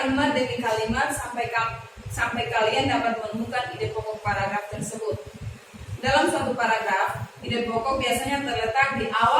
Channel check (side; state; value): both; identical; correlation 1.00